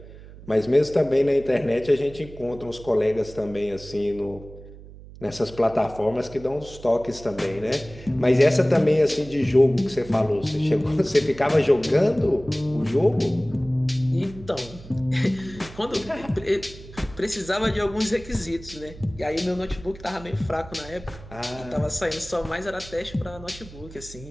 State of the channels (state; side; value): noise; right; hum, 17 dB below the sound